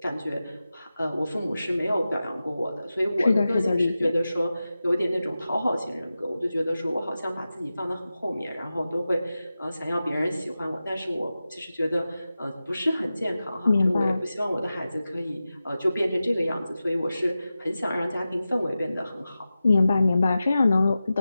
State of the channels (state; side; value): inverted; both; correlation -0.94